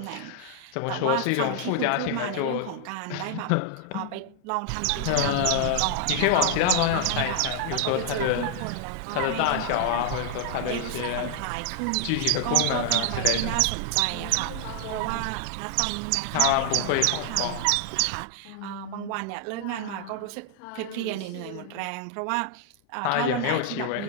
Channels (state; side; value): different; both; correlation 0.00